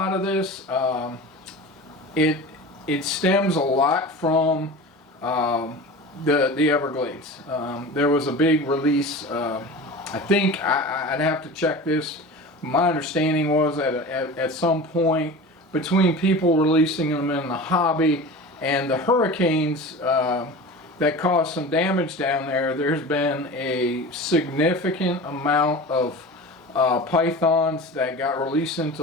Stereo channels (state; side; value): normal; both; correlation 0.33